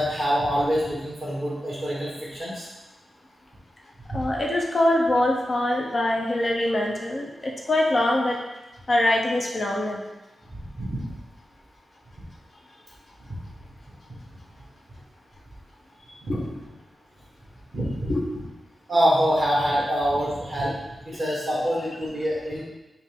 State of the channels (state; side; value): normal; both; correlation 0.91